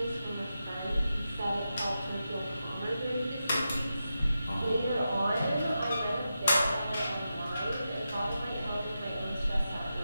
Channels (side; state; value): both; inverted; correlation -0.89